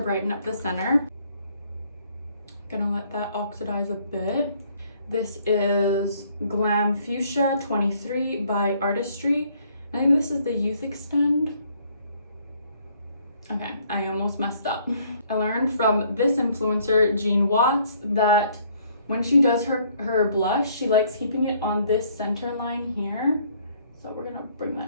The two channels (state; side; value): inverted; both; correlation -0.63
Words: brighten up the center. Gonna let that oxidize a bit. This is Glam Fuchsia 23 by Artistry. I think this is the Youth Extend. Okay, I almost messed up. I learned from this influencer, Jean Watts, that when she does her blush, she likes keeping it on this center line here. So we're gonna bring